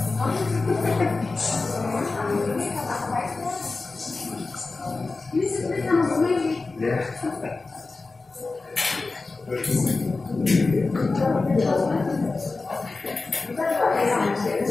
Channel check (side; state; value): right; quieter; 3.7 dB